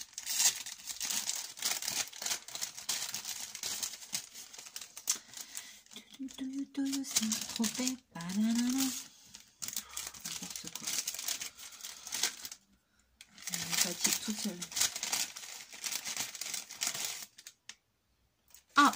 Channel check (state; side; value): identical; both; correlation 1.00